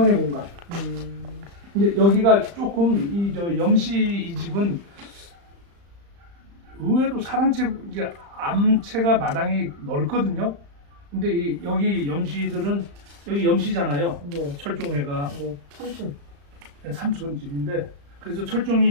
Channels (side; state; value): left; late; 35 ms